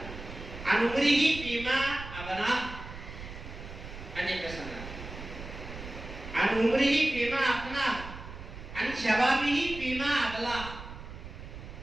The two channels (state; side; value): noise; right; rumble, 12 dB below the sound